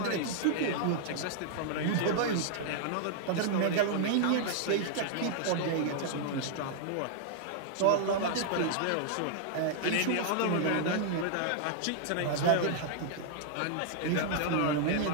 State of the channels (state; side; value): different; both; correlation -0.01